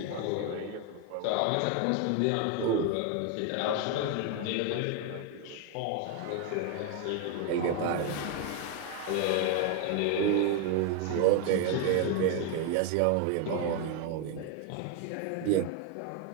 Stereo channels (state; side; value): different; both; correlation 0.01